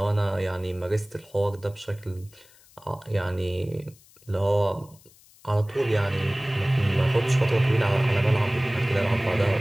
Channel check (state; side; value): noise; left; hiss, 27 dB below the sound